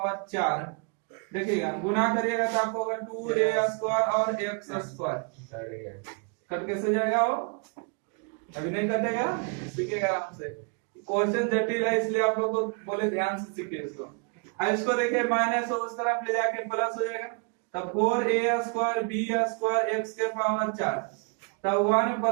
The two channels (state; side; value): quieter; left; 36.4 dB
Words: 4। देखिएगा गुना करिएगा तो आपको होगा 2a स्क्वायर और x स्क्वायर। कट कैसे जाएगा? वो अभी नहीं कटेगा, सीखिएगा आराम से। क्वेश्चन जटिल है इसलिए आप लोग को बोले ध्यान से सीखिए इसको। अब इसको देखिए माइनस उस तरफ ले जाके प्लस हो जाएगा, तब 4a square b square x के पावर 4, तब 1